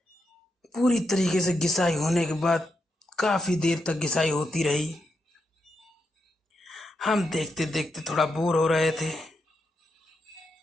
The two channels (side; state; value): both; normal; correlation 0.82